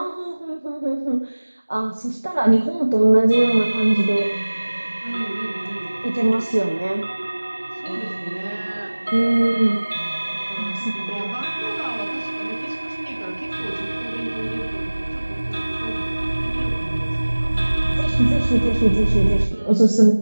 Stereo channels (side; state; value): both; inverted; correlation -1.00